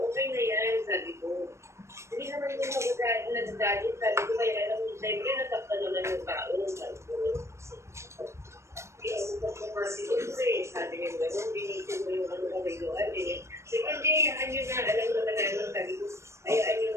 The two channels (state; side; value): late; left; 0.13 ms